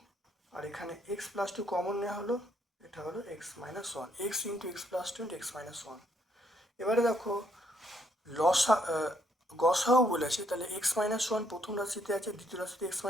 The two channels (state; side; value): normal; both; correlation 0.71